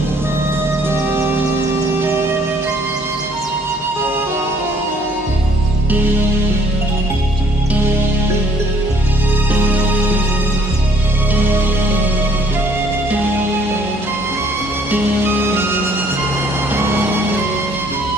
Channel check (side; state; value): both; normal; correlation 0.61